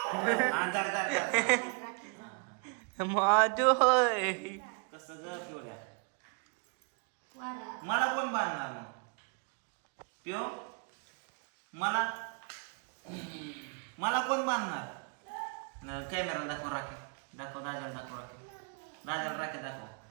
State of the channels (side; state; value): left; quieter; 36.9 dB